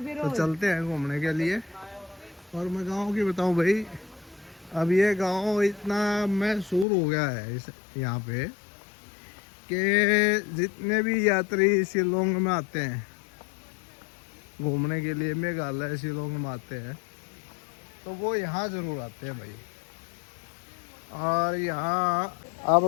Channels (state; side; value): drops out; right; at 6.9 s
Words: चलते हैं घूमने के लिए। और मैं गांव की बताऊं भाई, अब ये गांव इतना मशहूर हो गया है इस यहाँ पे कि जितने भी यात्री शिलोंग में आते हैं घूमने के लिए, मेघालय शिलोंग में आते हैं, तो वो यहाँ ज़रूर आते हैं भाई। और यहाँ आप